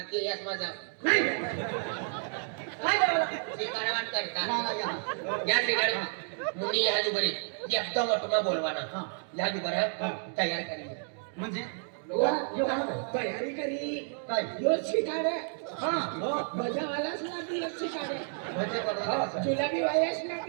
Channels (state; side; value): silent; left; 56 dB below the other